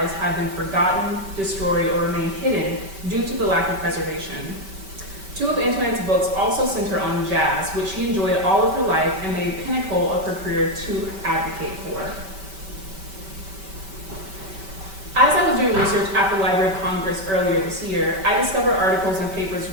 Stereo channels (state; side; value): late; left; 5.2 ms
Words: have been forgotten, destroyed, or remain hidden due to the lack of preservation. 2 of Antoinette's books also center on jazz, which she enjoyed all of her life and made pinnacle of her career to advocate for. As I was doing research at the Library of Congress earlier this year, I discovered articles and papers